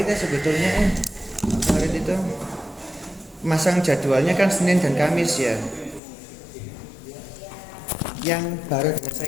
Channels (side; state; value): right; drops out; at 6.0 s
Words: ya sebetulnya. Pak Farid itu masang jadwalnya kan Senin dan Kamis ya. Yang baru dengan